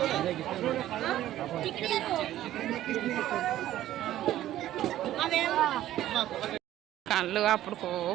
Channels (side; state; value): left; quieter; 13.4 dB